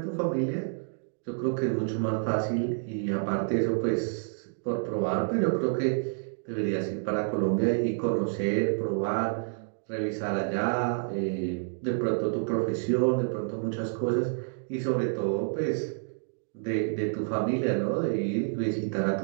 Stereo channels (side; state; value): left; silent; digital silence